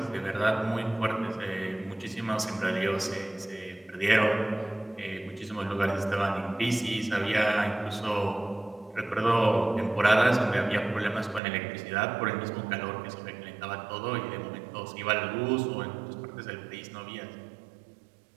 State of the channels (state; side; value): drops out; left; at 11.4 s